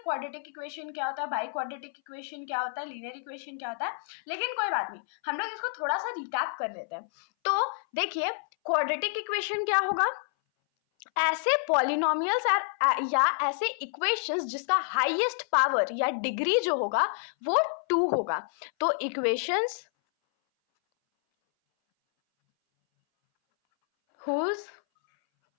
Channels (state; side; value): silent; right; 59 dB below the other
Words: इक्वेशन क्या होता है, बाई क्वाड्रेटिक इक्वेशन क्या होता है, लीनियर इक्वेशन क्या होता है। लेकिन कोई बात नहीं, हम लोग इसको थोड़ा सा रिकैप कर लेते हैं। तो देखिए, क्वाड्रेटिक इक्वेशन क्या होगा, ऐसे पॉलिनोमियल्स या ऐसे इक्वेशंस जिसका हाईएस्ट पावर या डिग्री जो होगा वो 2 होगा। तो इक्वेशंस whose